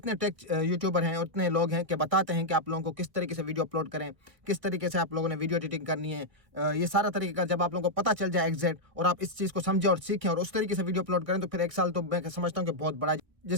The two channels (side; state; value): left; late; 1.8 ms